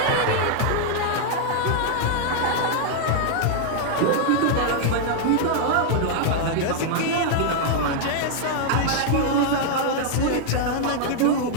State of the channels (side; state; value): both; different; correlation 0.00